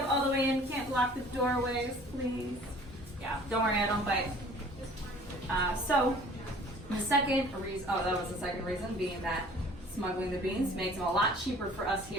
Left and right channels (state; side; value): normal; both; correlation 0.51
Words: all the way in, can't block the doorways, please. Yeah, don't worry, I don't bite. So, the second reason, that was the second reason, being that smuggling the beans makes them a lot cheaper for us